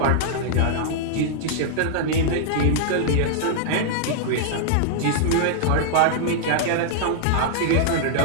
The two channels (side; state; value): both; different; correlation -0.01